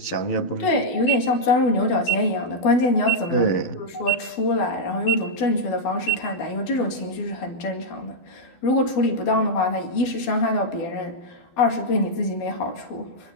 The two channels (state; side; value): late; right; 12 ms